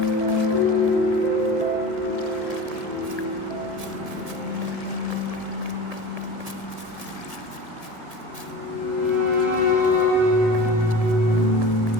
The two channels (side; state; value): left; late; 1.7 ms